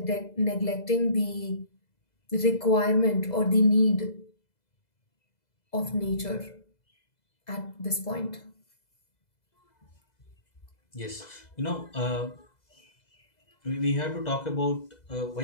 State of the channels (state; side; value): late; right; 2.0 ms